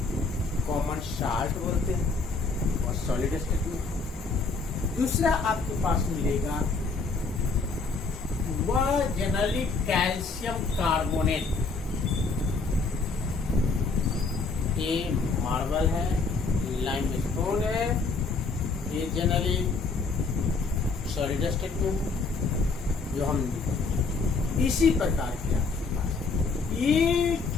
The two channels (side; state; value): right; quieter; 4.1 dB